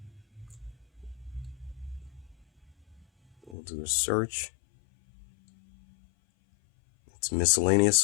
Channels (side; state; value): right; drops out; at 3.6 s